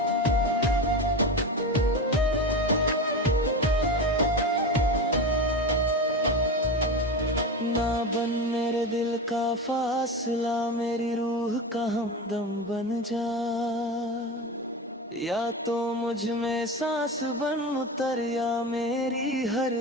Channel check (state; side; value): normal; both; correlation 0.23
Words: ना बन मेरे दिल का फासला, मेरी रूह का हमदम बन जा, या तो मुझ में सांस बन उतर, या मेरी हर